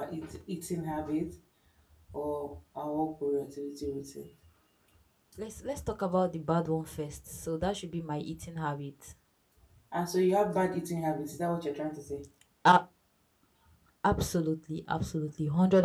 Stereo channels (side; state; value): both; identical; correlation 1.00